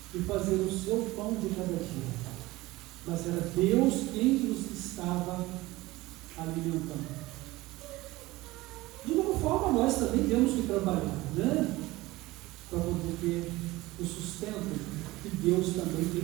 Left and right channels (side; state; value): left; quieter; 19.3 dB